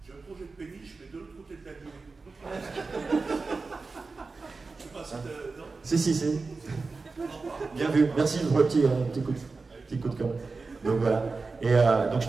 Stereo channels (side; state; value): left; quieter; 4.1 dB